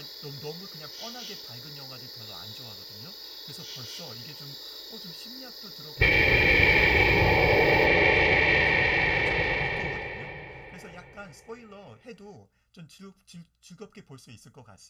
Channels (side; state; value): both; identical; correlation 1.00